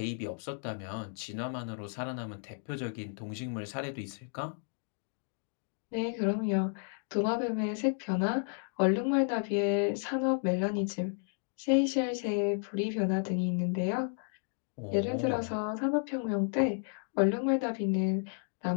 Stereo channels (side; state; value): right; silent; 56 dB below the other